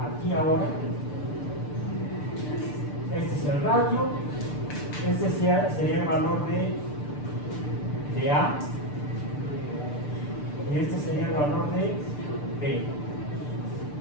aquí ahora. Este es el radio, este sería el valor de A y este sería el valor de B.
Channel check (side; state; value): right; late; 6.8 ms